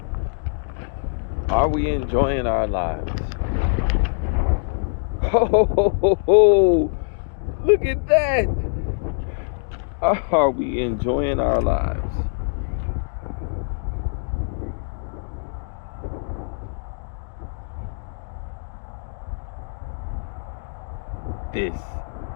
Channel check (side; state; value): right; silent; digital silence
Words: Are we enjoying our lives? Oh, look at that. Are we enjoying our lives? This